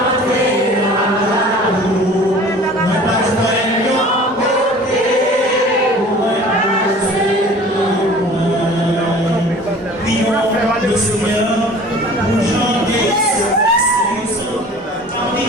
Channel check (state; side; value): normal; both; correlation 0.45